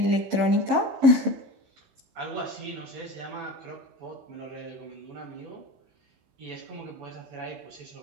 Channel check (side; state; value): left; late; 15 ms